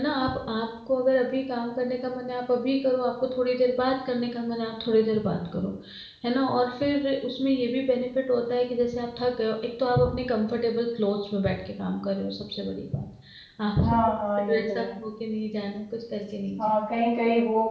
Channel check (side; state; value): both; identical; correlation 1.00